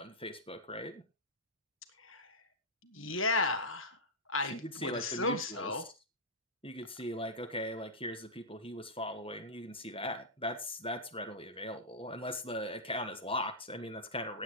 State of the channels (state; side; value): normal; both; correlation -0.11